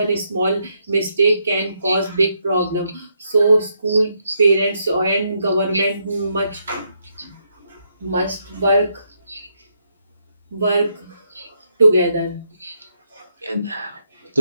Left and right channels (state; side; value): inverted; both; correlation -0.77